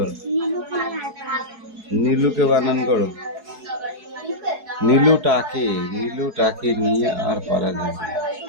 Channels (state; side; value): late; left; 4.7 ms